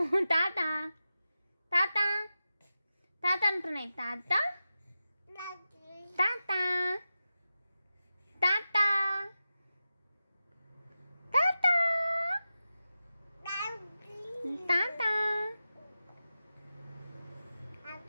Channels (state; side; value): inverted; both; correlation -0.92